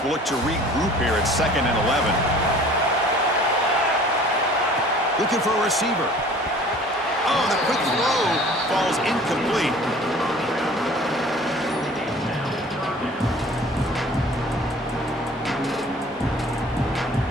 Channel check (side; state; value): both; normal; correlation 0.48